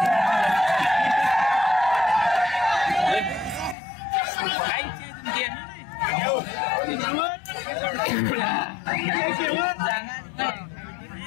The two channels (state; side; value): drops out; right; at 3.8 s